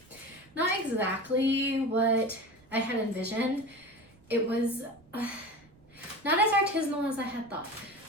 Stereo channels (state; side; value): noise; right; rumble, 29 dB below the sound